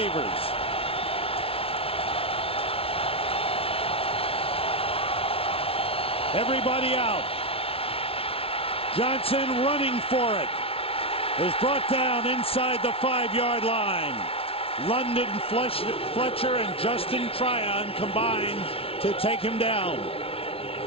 Everybody out. Johnson running for it. Is brought down inside the 5-yard line. London Fletcher and Justin Tryon combine to take him down.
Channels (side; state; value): right; late; 0.27 ms